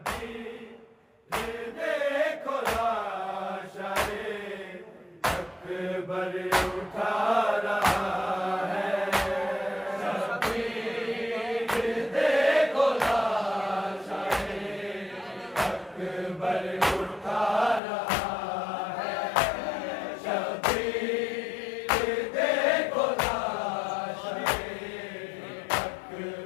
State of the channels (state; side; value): drops out; right; at 17.8 s